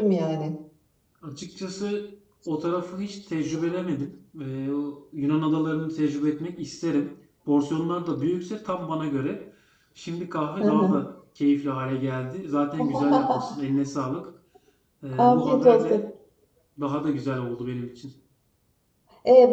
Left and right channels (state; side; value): identical; both; correlation 1.00